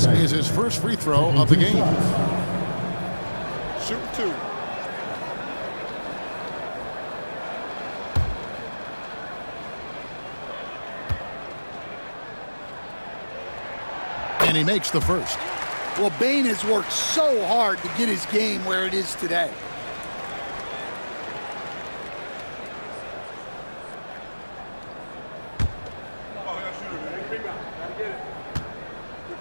is his first free throw of the game. Shoot 2. And he makes the first. Well, Bane has worked so hard to get his game where it is today.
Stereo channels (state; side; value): inverted; both; correlation -1.00